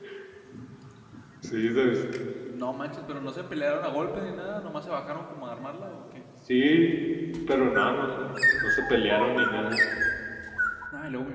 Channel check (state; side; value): identical; both; correlation 1.00